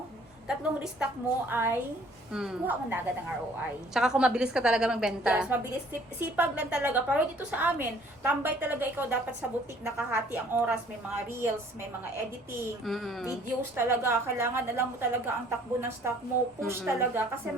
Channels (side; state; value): both; normal; correlation 0.57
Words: tatlong restock mo ay Mm. kuha mo na agad ang ROI. Tsaka kung mabilis ka talaga magbenta. Yes, mabilis. Sipag lang talaga. Pero dito sa amin, tambay talaga ikaw dapat sa boutique, nakahati ang oras. May mga reels, may mga editing, videos talaga. Kailangan alam mo talaga ang takbo ng stock mo. Push talaga. Kasi